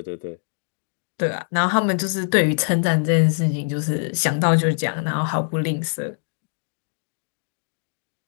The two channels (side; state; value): right; silent; digital silence